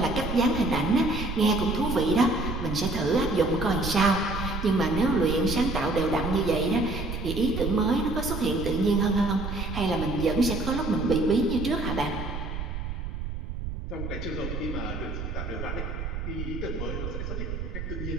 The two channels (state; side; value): noise; right; rumble, 5 dB below the sound